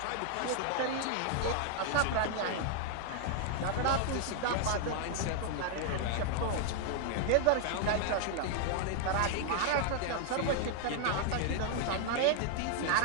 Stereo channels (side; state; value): both; different; correlation 0.00